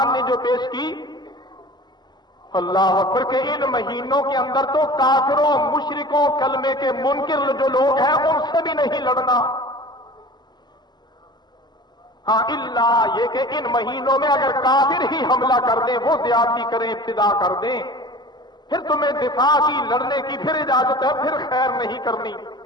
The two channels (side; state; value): right; late; 0.21 ms